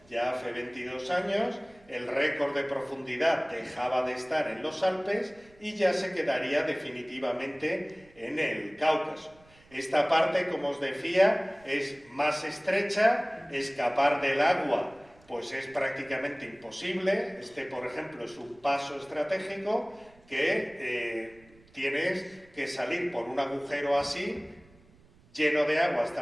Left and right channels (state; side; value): noise; right; rumble, 28 dB below the sound